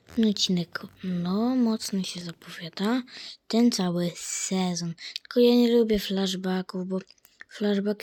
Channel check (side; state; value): both; identical; correlation 1.00